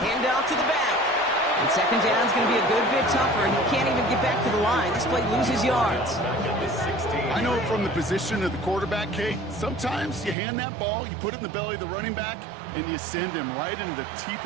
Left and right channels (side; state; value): left; drops out; at 10.4 s